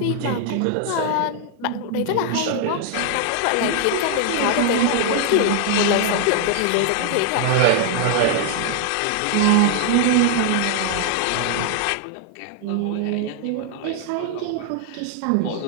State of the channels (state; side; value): different; both; correlation 0.00